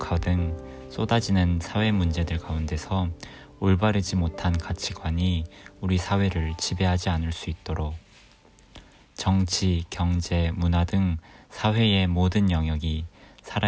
등 쏟아지는 사회 문제들 가운데서 올바르지 못한 가치관이 우리 사회를 지배하지 않을 수 있도록 정치, 경제, 문화 등 사회의 모든 영역이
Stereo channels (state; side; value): identical; both; correlation 1.00